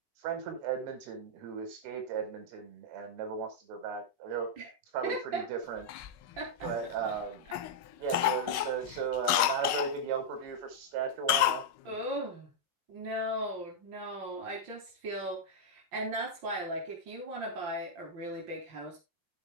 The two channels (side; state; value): left; late; 5.4 ms